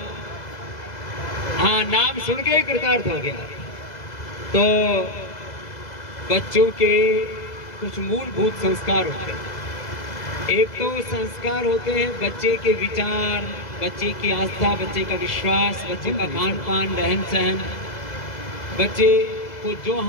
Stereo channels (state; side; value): late; right; 2.0 ms